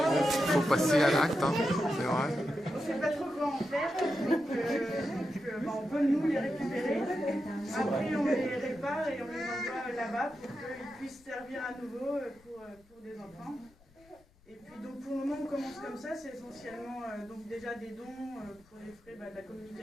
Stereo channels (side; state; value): left; noise; rumble, 29 dB below the sound